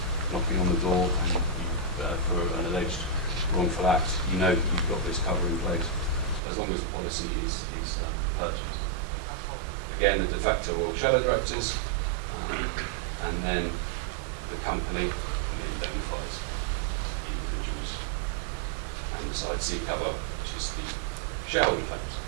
knocking on the door and for an alleged wrongful act. You know that you've got this cover in place as long as the policy is purchased. Again, the de facto or shadow directors, and then the company indemnifies the individuals, and the side C cover, which is the shareholder claims.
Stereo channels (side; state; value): left; drops out; at 6.4 s